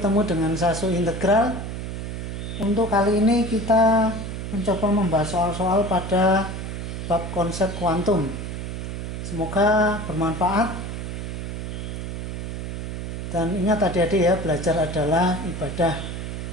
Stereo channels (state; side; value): noise; right; hum, 6 dB below the sound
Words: dengan Sasu Integral. Untuk kali ini kita mencoba membahas soal-soal pada bab konsep kuantum. Semoga bermanfaat. Dan ingat adik-adik ya, belajar adalah ibadah.